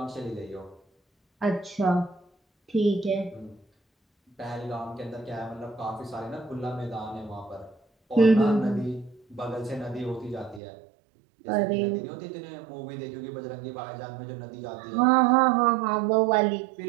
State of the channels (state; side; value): drops out; left; at 10.6 s